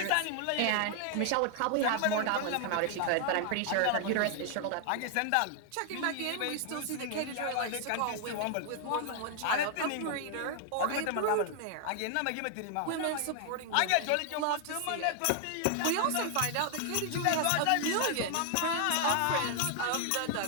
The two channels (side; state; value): both; different; correlation 0.00